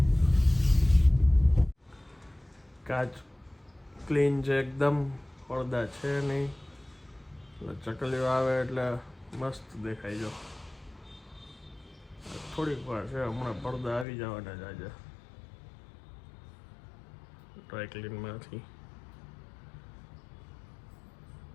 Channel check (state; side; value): drops out; right; at 14.1 s